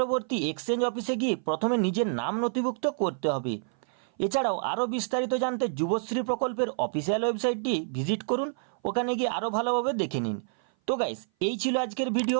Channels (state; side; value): silent; left; 57 dB below the other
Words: এক্সচেঞ্জ অফিসে গিয়ে প্রথমে নিজের নাম নথিভুক্ত করতে হবে। এছাড়াও আরও বিস্তারিত জানতে যুবশ্রী প্রকল্পের অফিসিয়াল ওয়েবসাইটটি ভিজিট করুন, ওখানে গিয়ে আরও ভালোভাবে দেখে নিন। তো গাইস, এই ছিল আজকের